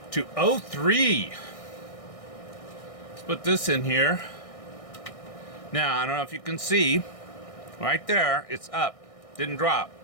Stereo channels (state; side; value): late; right; 1.6 ms